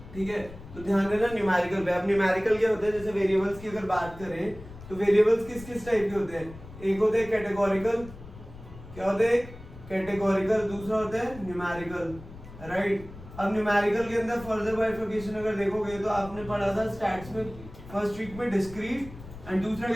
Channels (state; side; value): noise; left; rumble, 16 dB below the sound